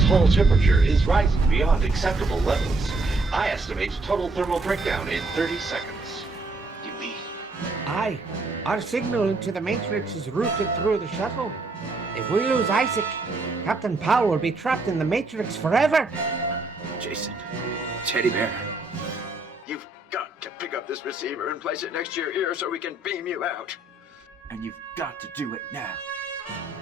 hull temperature is rising beyond acceptable levels. I estimate total thermal breakdown in 30 seconds. You mean? Aye. Our signal into the Matrix is routed through the shuttle. If we lose Isaac, Captain Powell will be trapped in the Matrix forever. Jason, Teddy Bear, you've got to pick up this receiver and place it next to your ear so we can beam you out. And you've got to do it now.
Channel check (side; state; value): left; quieter; 3.1 dB